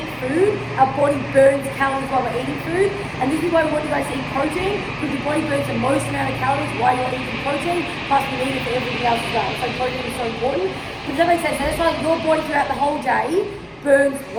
food, our body burns calories while we're eating food. And this is why we want you guys to eat protein, because your body burns the most amount of calories while you're eating protein, plus we need it for everything else as well. So protein is so important. Does that make sense? So that's why your body throughout the whole day burns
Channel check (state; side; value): identical; both; correlation 1.00